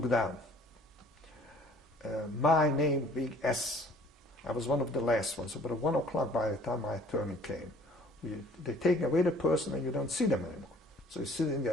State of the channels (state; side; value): normal; both; correlation 0.54